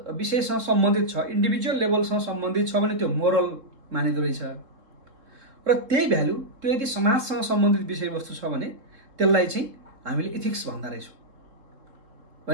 विषयसँग सम्बन्धित छ, इन्डिभिजुअल लेभलसँग सम्बन्धित छ भने त्यो मोरल मानिँदो रहेछ। र त्यही भ्याल्यु त्यो यदि समाजसँग सम्बन्धित विषयवस्तु छ भने त्यसलाई चाहिँ हामीले इथिक्स भन्दा रहेछौँ।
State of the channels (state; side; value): late; left; 3.7 ms